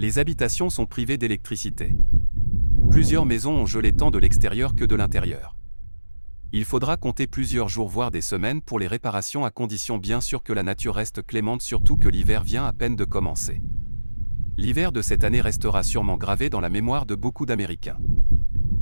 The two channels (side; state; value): both; inverted; correlation -1.00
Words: habitations sont privées d'électricité. Plusieurs maisons ont gelé tant de l'extérieur que de l'intérieur. Il faudra compter plusieurs jours voire des semaines pour les réparations, à condition bien sûr que la nature reste clémente, surtout que l'hiver vient à peine de commencer. L'hiver de cette année restera sûrement gravé dans la mémoire de beaucoup d'Américains.